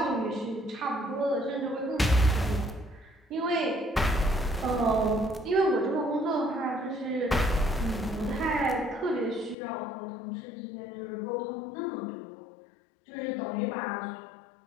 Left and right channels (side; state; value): right; drops out; at 9.6 s